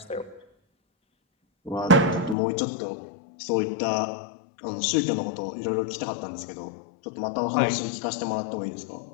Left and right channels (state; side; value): drops out; right; at 2.4 s